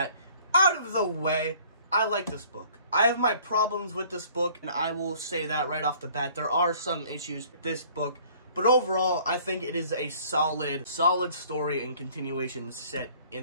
out of the way, I like this book. I have my problems with this book, and I will say that right off the bat. There are some issues with this book, but overall, I think it is a solid story and continuation set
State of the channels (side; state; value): both; inverted; correlation -0.55